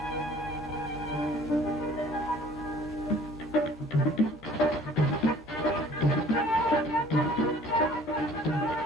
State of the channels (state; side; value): normal; both; correlation 0.53